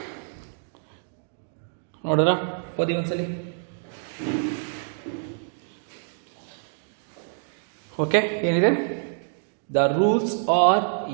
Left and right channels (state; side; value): silent; left; digital silence